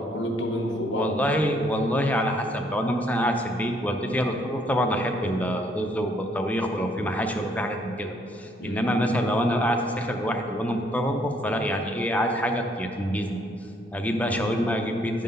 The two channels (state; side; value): normal; both; correlation 0.67